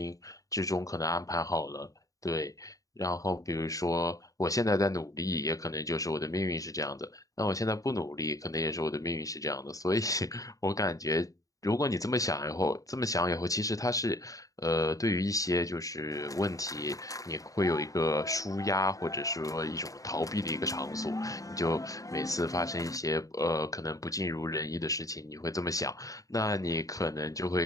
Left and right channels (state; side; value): late; right; 0.16 ms